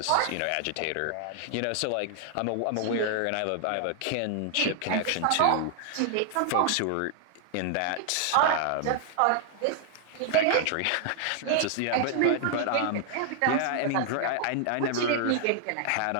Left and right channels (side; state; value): both; different; correlation 0.00